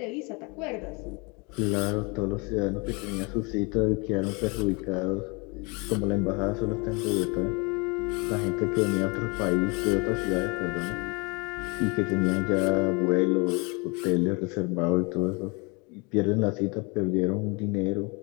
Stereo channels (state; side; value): quieter; right; 29.6 dB